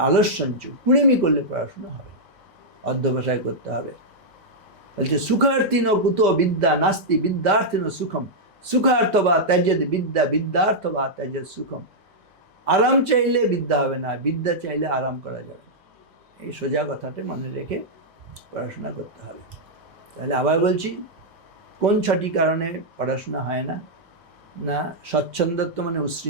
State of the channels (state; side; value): late; left; 2.0 ms